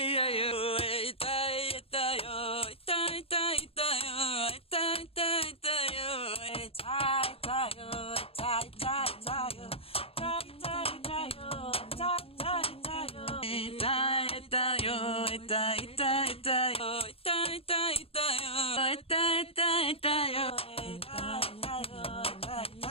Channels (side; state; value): right; late; 0.28 ms